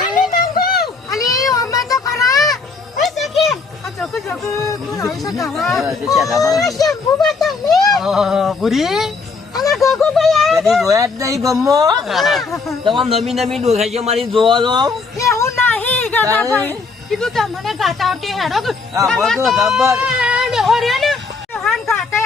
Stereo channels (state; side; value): quieter; right; 4.4 dB